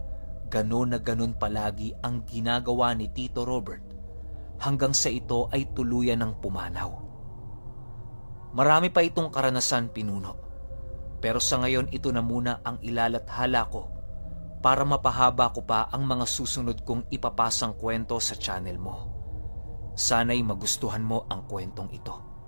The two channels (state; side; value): inverted; both; correlation -1.00